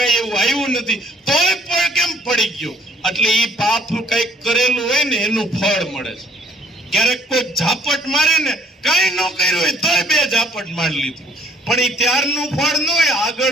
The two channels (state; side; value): normal; both; correlation 0.60